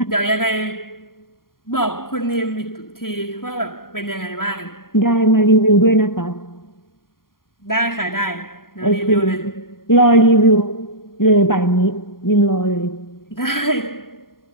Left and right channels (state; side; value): late; right; 0.91 ms